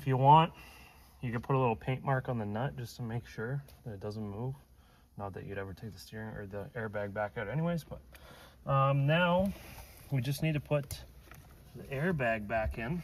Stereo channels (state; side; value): identical; both; correlation 1.00